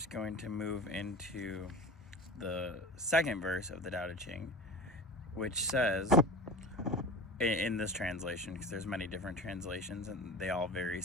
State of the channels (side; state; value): both; normal; correlation 0.33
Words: going to move into the second verse of the Tao De Ching, which says, in this translation, because there's many different translations and they all vary